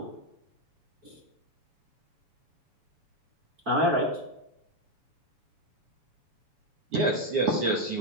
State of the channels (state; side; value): late; left; 7.1 ms